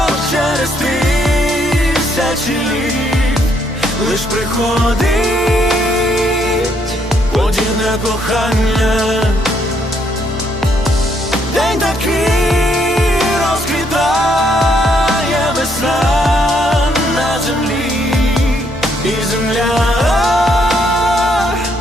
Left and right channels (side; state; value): both; normal; correlation 0.72